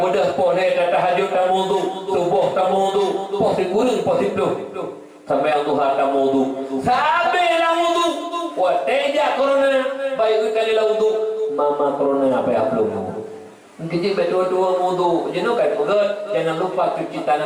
pohne ta tahajud ta wudu subuh ta wudu poh kurung poh itu sampai yang duha ta wudu sampai la wudu wa teja corona baik kali la wudu mama corona apa ya belum Kita berdua-dua wudu, jenuh kan urat, jangan lupa cuci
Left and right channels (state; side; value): identical; both; correlation 1.00